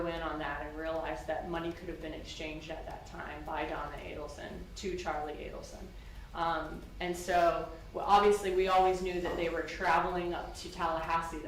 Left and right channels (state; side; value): identical; both; correlation 1.00